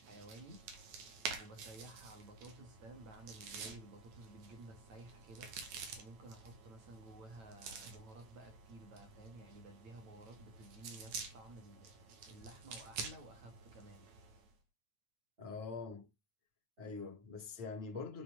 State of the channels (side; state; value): left; late; 9.0 ms